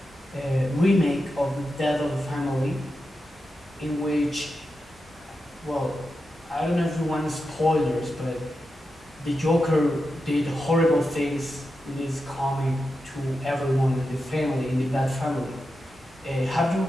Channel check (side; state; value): both; normal; correlation 0.89